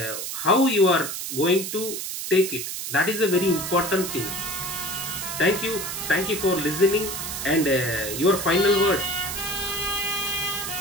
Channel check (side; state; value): right; noise; hiss, 5 dB below the sound